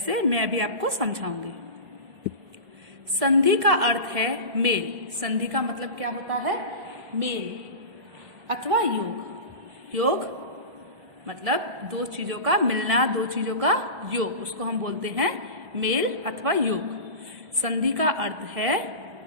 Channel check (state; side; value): late; left; 1.8 ms